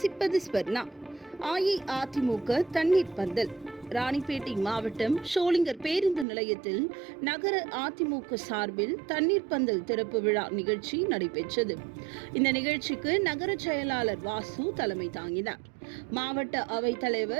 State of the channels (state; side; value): drops out; left; at 6.2 s